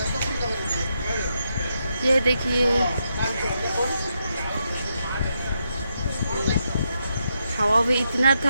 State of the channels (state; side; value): inverted; both; correlation -0.82